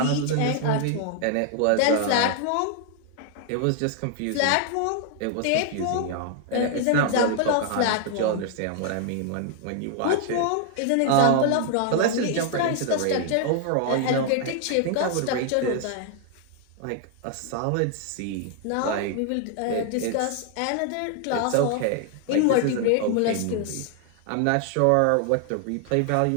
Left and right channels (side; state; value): both; different; correlation 0.00